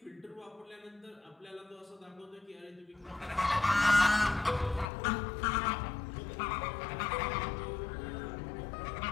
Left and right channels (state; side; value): drops out; right; at 4.9 s